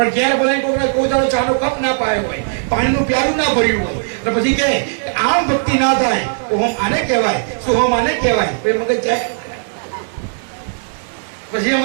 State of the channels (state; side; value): silent; left; digital silence